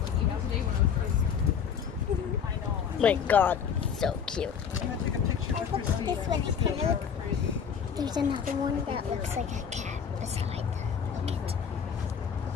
My God, so cute. I'm gonna take a picture with Christine. This one is kind of look. There's another one that looks like a cat beside them. Look at.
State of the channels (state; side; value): quieter; right; 7.2 dB